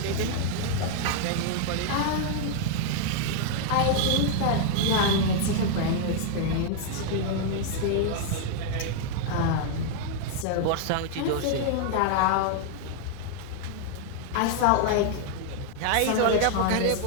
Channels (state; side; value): different; both; correlation 0.00